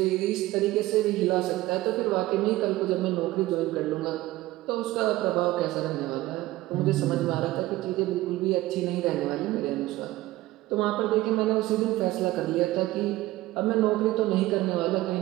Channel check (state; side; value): quieter; left; 17.1 dB